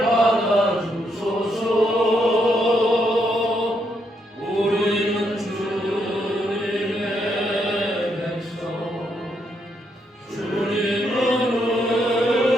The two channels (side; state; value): both; normal; correlation 0.77